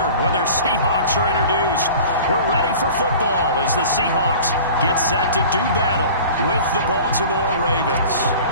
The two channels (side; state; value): both; inverted; correlation -0.41